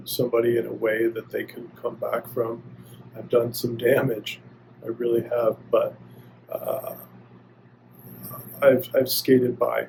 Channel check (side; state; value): both; identical; correlation 1.00